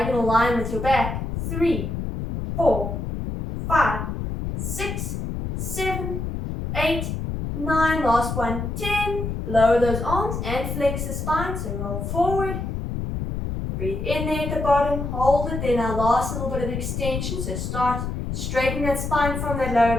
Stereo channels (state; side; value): noise; left; rumble, 4 dB below the sound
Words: line with your back. 3, 4, 5, 6, 7, 8, 9, last one, 10. Lower those arms and flex the spine, so roll forward. Breathe in there at the bottom, hold it, then our last little bit of extension, so start straightening that spine from that lower